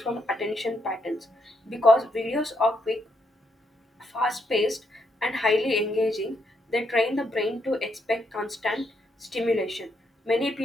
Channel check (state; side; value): normal; both; correlation 0.77